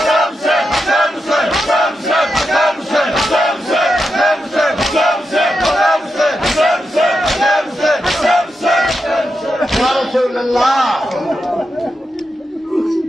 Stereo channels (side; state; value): both; normal; correlation 0.87